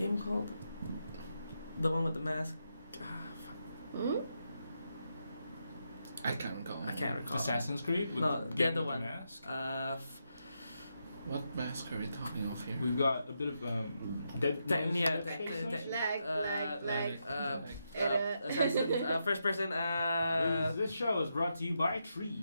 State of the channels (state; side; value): inverted; both; correlation -0.83